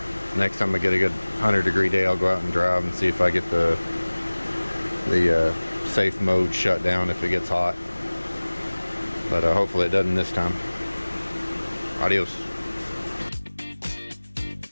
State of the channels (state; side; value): inverted; both; correlation -1.00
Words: Next time I get a good 100-degree day, I'll go out and drive and see if I get the safe mode shut down if it gets hot. But hopefully it doesn't this time. Adios.